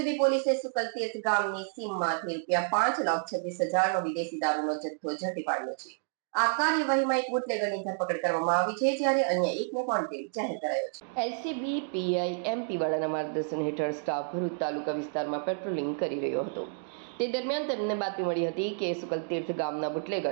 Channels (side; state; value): left; silent; digital silence